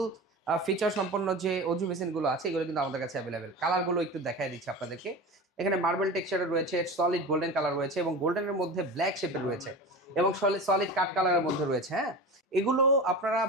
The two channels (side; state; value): both; normal; correlation 0.30